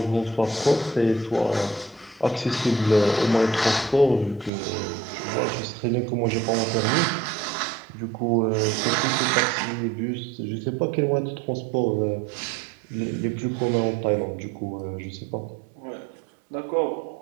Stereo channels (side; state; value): left; drops out; at 4.5 s